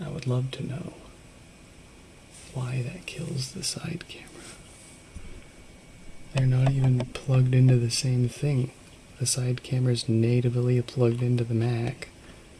would love to know why that kills the side camera. They're not even plugged into the same thing. The side camera's natively plugged into the Mac,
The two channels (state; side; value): identical; both; correlation 1.00